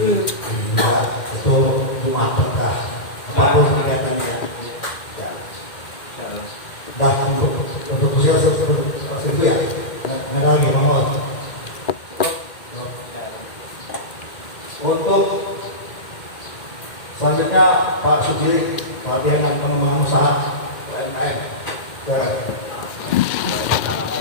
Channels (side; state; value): right; late; 2.1 ms